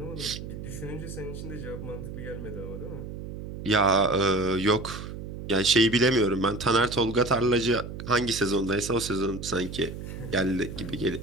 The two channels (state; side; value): noise; right; hum, 9 dB below the sound